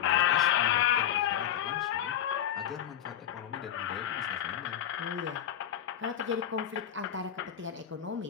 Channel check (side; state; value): right; quieter; 10.1 dB